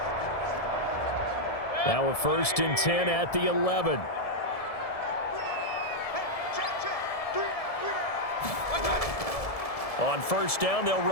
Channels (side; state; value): right; late; 1.7 ms